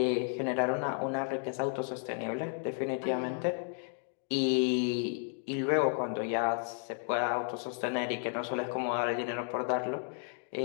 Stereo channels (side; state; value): right; silent; 56 dB below the other